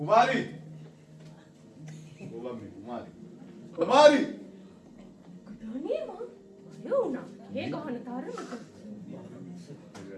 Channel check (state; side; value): identical; both; correlation 1.00